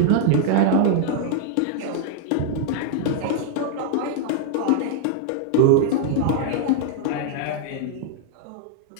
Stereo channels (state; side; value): different; both; correlation -0.01